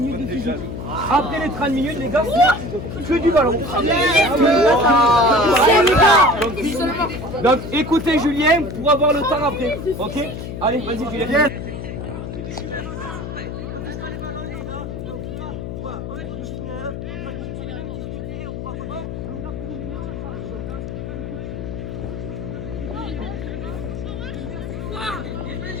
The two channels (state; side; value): noise; left; hum, 7 dB below the sound